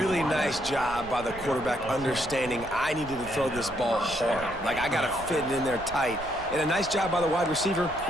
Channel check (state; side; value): noise; right; rumble, 16 dB below the sound